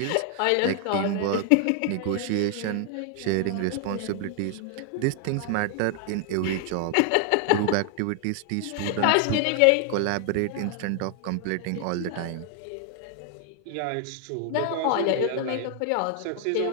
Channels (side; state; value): both; different; correlation 0.00